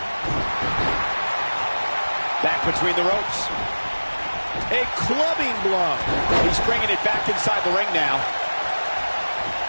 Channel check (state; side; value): inverted; both; correlation -1.00